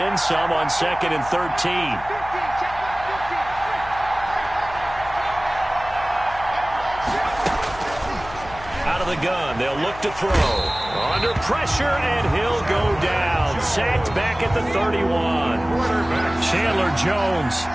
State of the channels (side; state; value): left; noise; hum, 16 dB below the sound